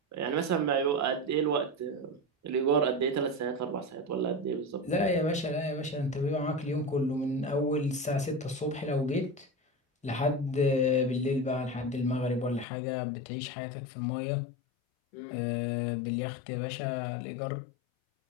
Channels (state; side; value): drops out; right; at 12.7 s